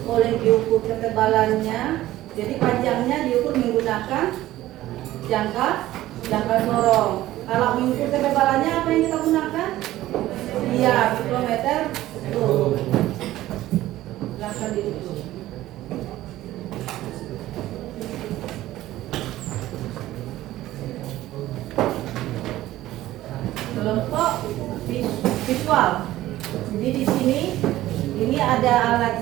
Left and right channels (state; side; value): quieter; left; 15.3 dB